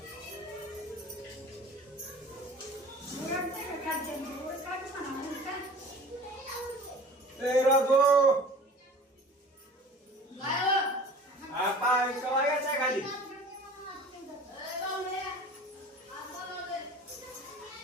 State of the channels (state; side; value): normal; both; correlation 0.43